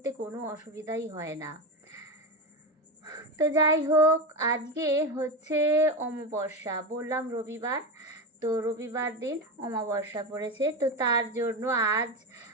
কোনো অসুবিধাই হয় না। তো যাই হোক, আজকে হচ্ছে অমাবস্যা, বললাম রবিবার। তো রবিবার দিন অমাবস্যা পড়েছে, তো তার জন্য আজ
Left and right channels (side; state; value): both; normal; correlation 0.18